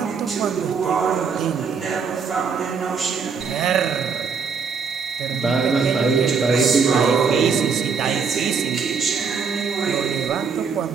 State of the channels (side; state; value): left; quieter; 5.6 dB